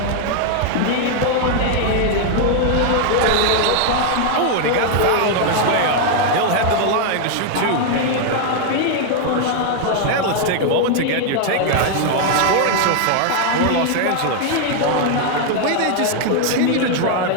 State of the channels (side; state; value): both; different; correlation 0.00